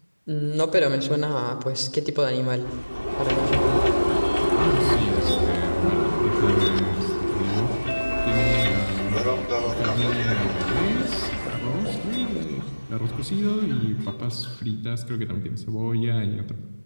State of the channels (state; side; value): inverted; both; correlation -1.00